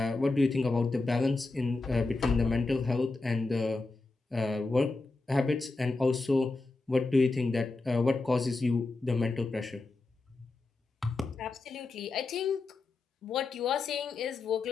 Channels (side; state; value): right; quieter; 3.4 dB